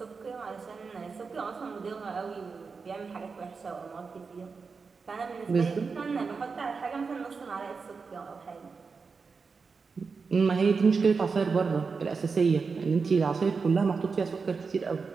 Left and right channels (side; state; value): left; quieter; 4.9 dB